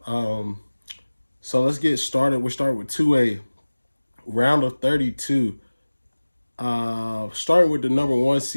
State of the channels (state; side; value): inverted; both; correlation -1.00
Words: So let's get started. We'll start with 2A, round of 32. Starting with the number 1